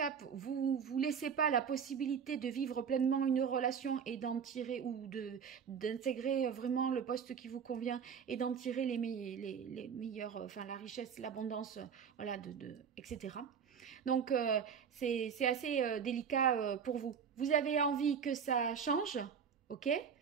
vous laissez pas la possibilité de vivre pleinement une relation et d'en tirer ou d'intégrer vraiment le poste qui vous convient et d'en tirer les meilleurs, enfin la richesse, l'abondance, voilà, etc. Donc c'est assez délicat pour vous. Vous avez envie que ça change, ok,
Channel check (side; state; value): left; quieter; 7.0 dB